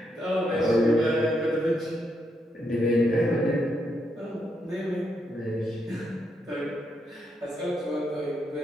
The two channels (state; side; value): normal; both; correlation 0.79